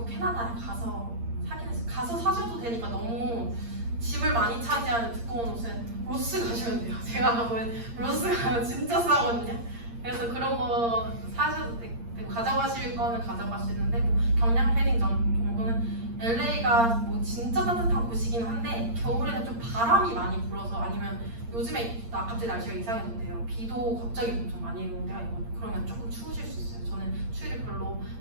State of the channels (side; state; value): left; late; 8.7 ms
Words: 캐나다에 가서 사긴 했어요. 가서 사셔도 되니까 너무 짐을 많이 차지하는 두꺼운 옷은 로스 가시면 돼요. 제가 가보면 로스 가면 진짜 싸거든요. 그래서 그런 거 사셔도 되고 가져가실 거는 가져가시는데 뭐 경량 패딩 정도는 LA가 뭐 진짜 따뜻한 곳이긴 한데 겨울에는 좀 바람이 많이 불어서 아니면 요즘에 갑자기 날씨가 이상해졌대요. 비도 갑자기 엄청 많이 오는 데가 있거든요. 그러면 조금 추우실 수 있어요. 저는 추위를 별로